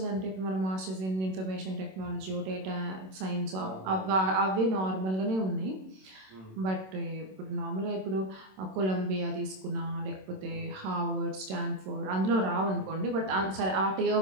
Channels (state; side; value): late; left; 27 ms